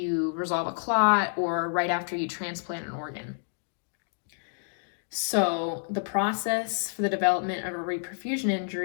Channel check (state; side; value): silent; right; digital silence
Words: resolve a clot or right after you transplant an organ. So the process for the development of a reperfusion